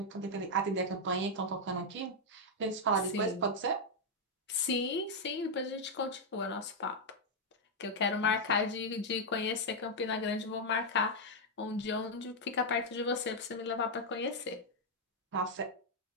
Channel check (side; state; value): both; normal; correlation -0.01